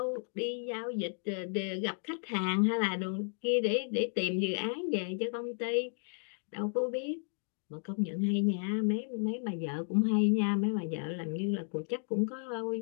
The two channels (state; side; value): silent; right; 56 dB below the other